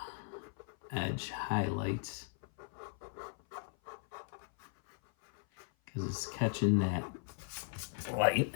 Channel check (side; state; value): right; silent; 53 dB below the other